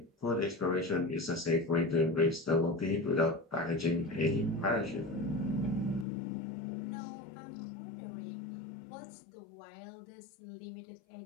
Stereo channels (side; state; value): right; drops out; at 6.1 s